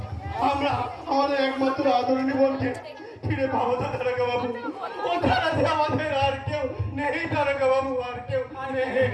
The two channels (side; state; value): both; identical; correlation 1.00